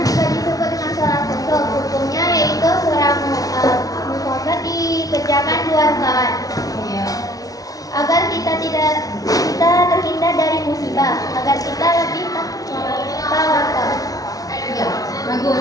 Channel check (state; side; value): late; right; 0.18 ms